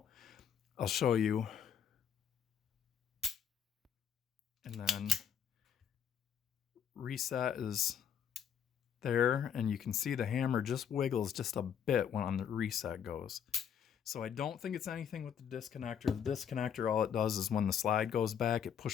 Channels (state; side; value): quieter; right; 8.1 dB